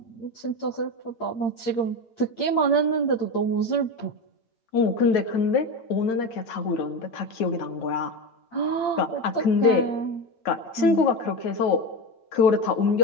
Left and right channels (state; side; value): late; right; 8.9 ms